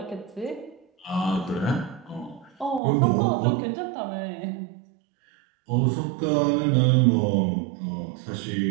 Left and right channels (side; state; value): left; drops out; at 2.8 s